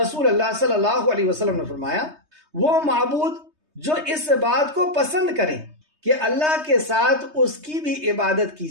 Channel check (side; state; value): left; late; 3.2 ms